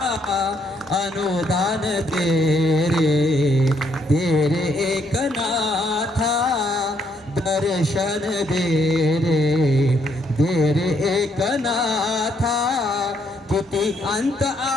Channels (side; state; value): both; normal; correlation 0.72